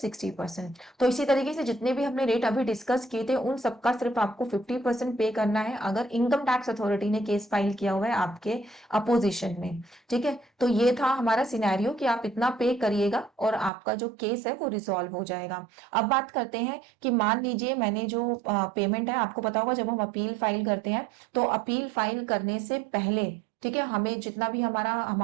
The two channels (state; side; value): drops out; left; at 13.7 s